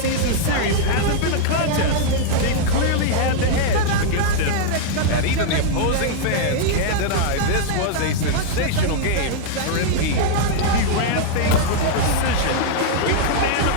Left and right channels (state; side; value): different; both; correlation -0.01